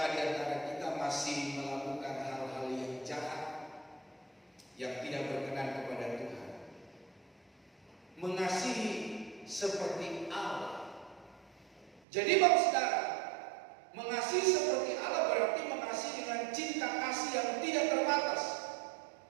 di antara kita masih melakukan hal-hal yang jahat, yang tidak berkenan kepada Tuhan? Mengasihi seperti Allah. Jadi Bapak Saudara, mengasihi seperti Allah berarti mengasihi dengan cinta kasih yang tidak terbatas,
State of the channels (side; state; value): left; drops out; at 12.0 s